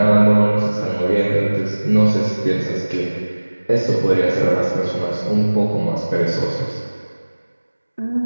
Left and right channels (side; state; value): both; inverted; correlation -1.00